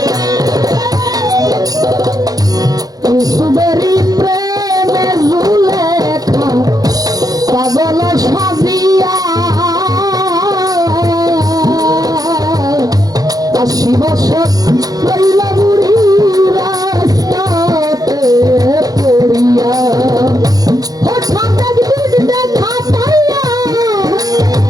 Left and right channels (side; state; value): left; late; 0.18 ms